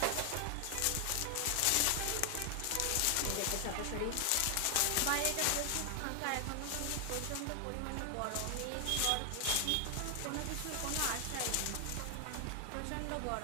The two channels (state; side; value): different; both; correlation 0.00